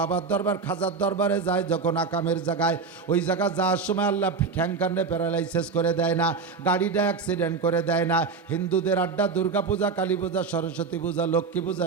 দরবার, খাজার দরবারে যায় যখন আকামের জায়গায়, ওই জায়গা যাওয়ার সময় আল্লাহ ঠ্যাংকান্ডে প্যারালাইসিস করে দেয় না, গাড়িটা অ্যাক্সিডেন্ট করে দেয় না। হিন্দুদের আড্ডা, দুর্গা পূজা, কালী পূজা, সরস্বতী পূজা, লক্ষ্মী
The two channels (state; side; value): quieter; left; 4.9 dB